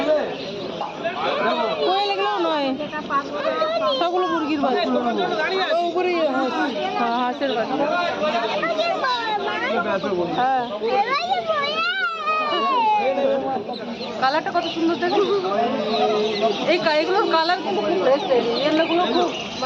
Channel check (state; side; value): identical; both; correlation 1.00